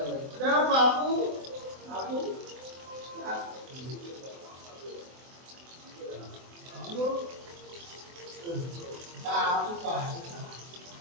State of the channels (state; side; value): late; left; 24 ms